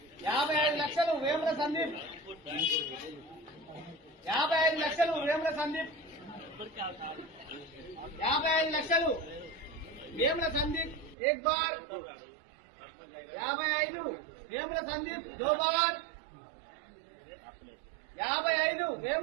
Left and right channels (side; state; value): left; drops out; at 11.2 s